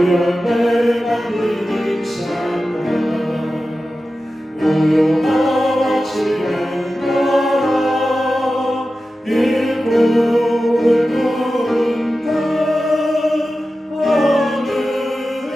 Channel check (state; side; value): normal; both; correlation 0.93